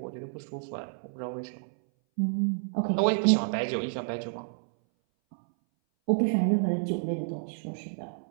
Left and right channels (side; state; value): left; silent; 58 dB below the other